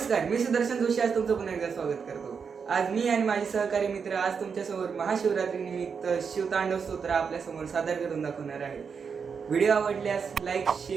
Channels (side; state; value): left; quieter; 6.1 dB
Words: मी सुदर्शन जोशी आज तुमचं पुन्हा एकदा स्वागत करतो। आज मी आणि माझे सहकारी मित्र आज तुमच्यासमोर महाशिवरात्री निमित्त शिवतांडव स्तोत्र आपल्या समोर सादर करून दाखवणार आहे। व्हिडिओ आवडल्यास लाईक,